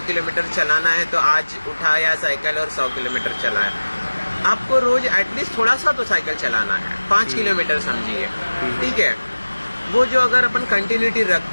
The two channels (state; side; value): inverted; both; correlation -1.00